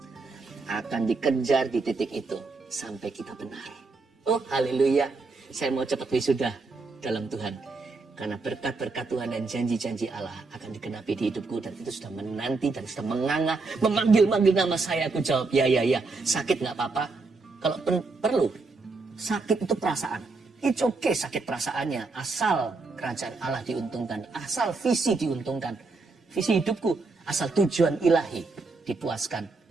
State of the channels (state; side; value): quieter; left; 3.9 dB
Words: Akan dikejar di titik itu sampai kita benar. Oh haleluya, saya mau cepat wisuda dalam Tuhan. Karena berkat-berkat Tuhan dan janji-janji Allah akan digenapi di hidupku. Dan itu sudah menanti dan sudah menganga, memanggil-manggil nama saya. Aku jawab, ya. Sakit gak apa-apa. Kalau perlu, sakit itu perasaan. It's okay sakit perasaannya. Asal kerajaan Allah diuntungkan. Asal visi diuntungkan. Visi hidupku, asal tujuan ilahi dipuaskan.